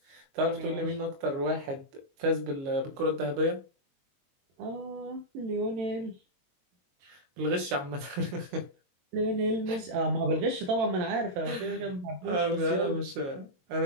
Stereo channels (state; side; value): late; left; 22 ms